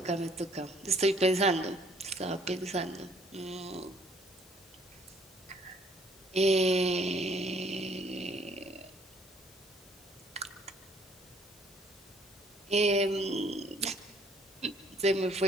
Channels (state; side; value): normal; both; correlation 0.61